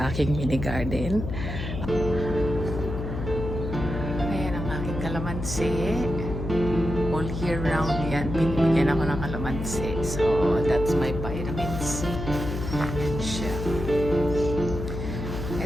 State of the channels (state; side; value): noise; left; hum, 5 dB below the sound